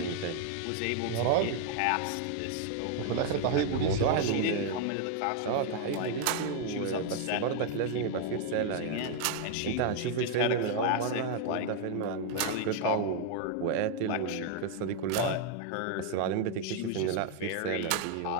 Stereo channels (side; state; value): both; different; correlation 0.00